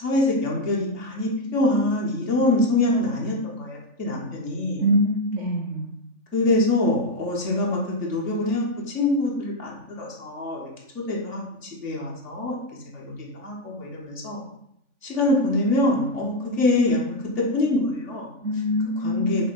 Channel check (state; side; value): late; left; 3.4 ms